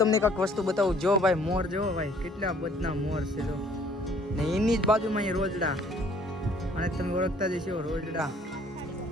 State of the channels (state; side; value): normal; both; correlation 0.58